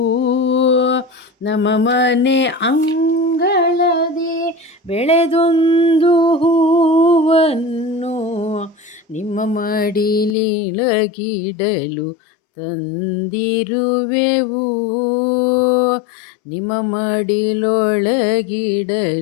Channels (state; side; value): drops out; right; at 10.4 s